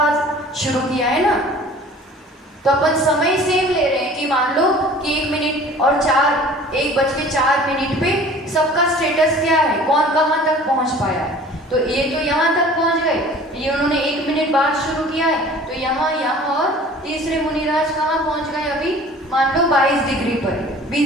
शुरू किया है ना, तो अपन समय सेम ले रहे हैं कि मान लो कि 1 मिनट और 1:04 पे सबका स्टेटस क्या है, कौन कहाँ तक पहुंच पाया है। तो ये तो यहाँ तक पहुंच गए, ये उन्होंने 1 मिनट बाद शुरू किया है, तो यहाँ और तीसरे मुनिराज कहाँ पहुंच गए? अभी मान लो 22 डिग्री पर,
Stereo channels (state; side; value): normal; both; correlation 0.46